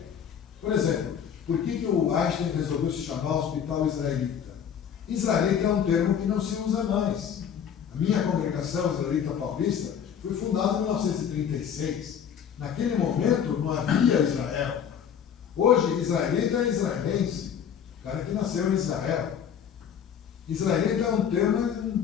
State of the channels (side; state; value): right; quieter; 8.2 dB